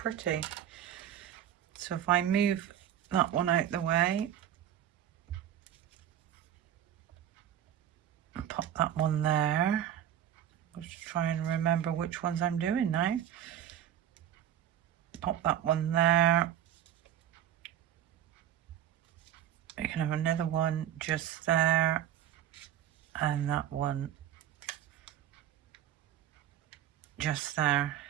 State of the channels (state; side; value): quieter; left; 10.8 dB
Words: So if I move that one out the way, pop that one there. Let's try and remember which ones I'm doing now. Pop that one there. You can have another one just there, and that one just there.